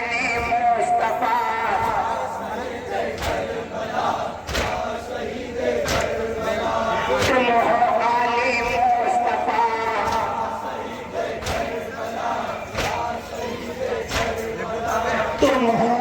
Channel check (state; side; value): identical; both; correlation 1.00